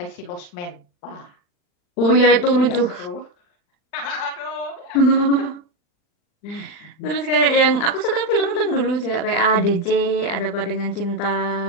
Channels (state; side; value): late; right; 39 ms